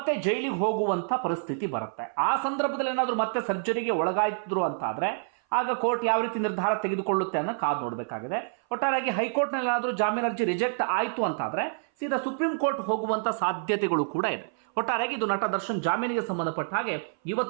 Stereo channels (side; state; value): left; silent; 57 dB below the other